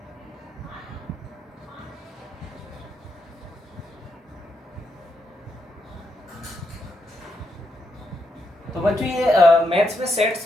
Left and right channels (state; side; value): normal; both; correlation 0.81